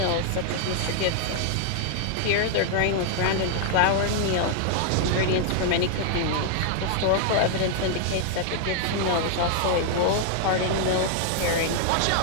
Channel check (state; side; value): different; both; correlation 0.00